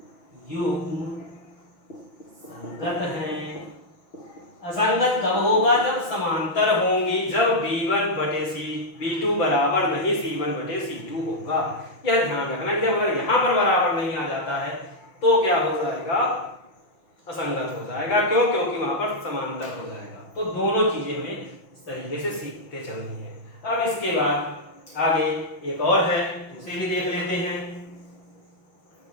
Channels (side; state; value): right; late; 6.0 ms